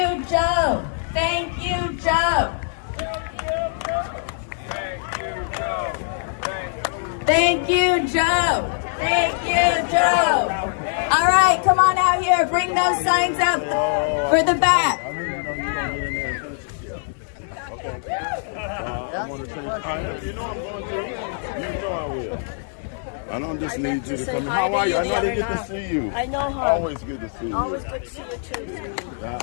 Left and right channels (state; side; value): silent; right; 62 dB below the other